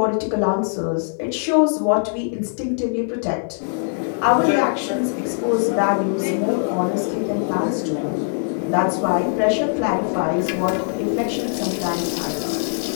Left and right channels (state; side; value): silent; right; 57 dB below the other